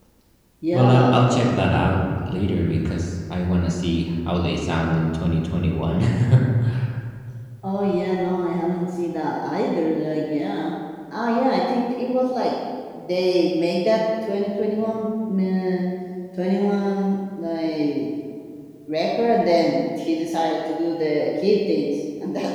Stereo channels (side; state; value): both; identical; correlation 1.00